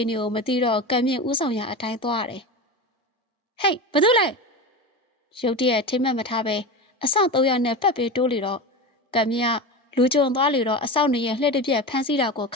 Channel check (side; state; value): both; normal; correlation 0.25